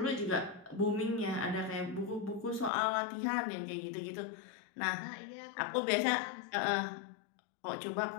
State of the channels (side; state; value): right; drops out; at 2.7 s